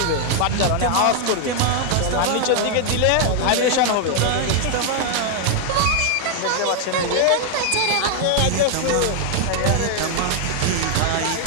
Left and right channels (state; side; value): different; both; correlation 0.00